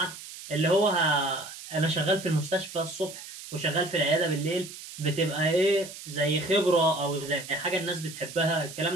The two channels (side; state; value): right; noise; hiss, 13 dB below the sound